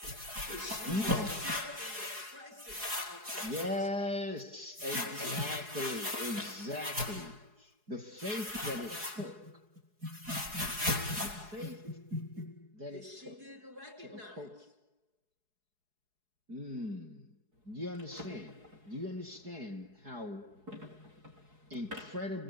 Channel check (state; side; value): late; left; 4.7 ms